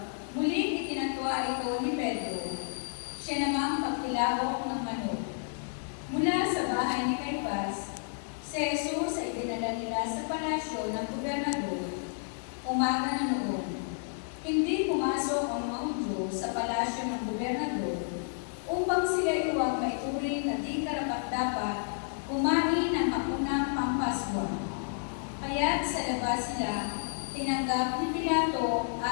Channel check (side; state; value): right; silent; digital silence